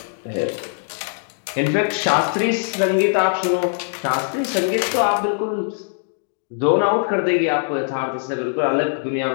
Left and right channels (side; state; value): right; silent; digital silence